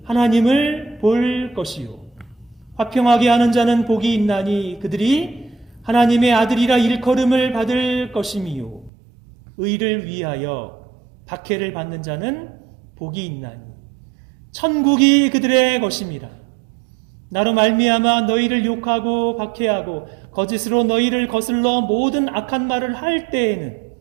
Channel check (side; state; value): left; drops out; at 8.9 s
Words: 하나님을 볼 것이요, 화평하게 하는 자는 복이 있나니 그들이 하나님의 아들이라 일컬음을 받을 것임이요, 의를 위하여 박해를 받는 자는 복이 있나니 천국이 그들의 것임이라. 나로 말미암아 너희를 욕하고 박해하고 거짓으로 너희를 거슬러 모든 악한 말을 할 때에는